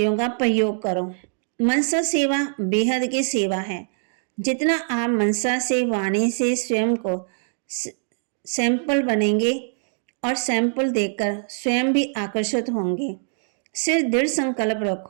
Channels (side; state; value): left; silent; digital silence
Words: का प्रयोग करो। मनसा सेवा बेहद की सेवा है। जितना आप मनसा से वाणी से स्वयं को सैंपल बनेंगे और सैंपल देखकर स्वयं भी आकर्षित होंगे। सिर्फ दृढ़ संकल्प